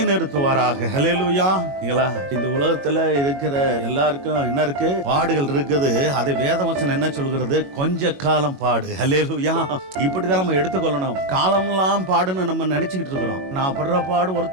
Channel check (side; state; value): left; late; 21 ms